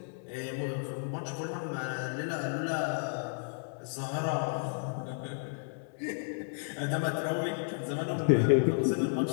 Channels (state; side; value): silent; right; digital silence